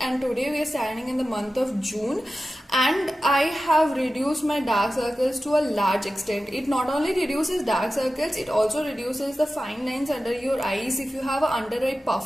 today we are standing in the month of June, and I have reduced my dark circles to a large extent. It not only reduces dark circles, it also reduces the fine lines under your eyes. If you have an under eye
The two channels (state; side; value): normal; both; correlation 0.94